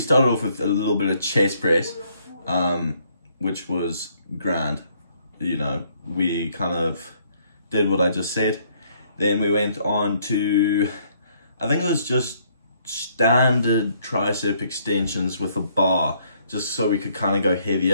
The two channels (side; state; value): both; inverted; correlation -0.66